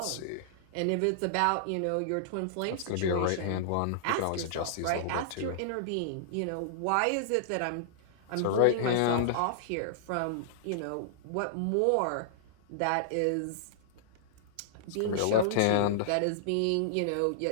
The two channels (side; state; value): both; different; correlation -0.01